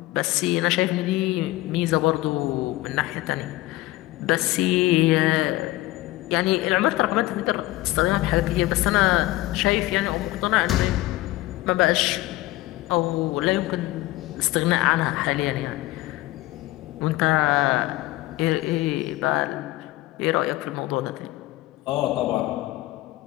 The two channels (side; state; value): right; quieter; 18.0 dB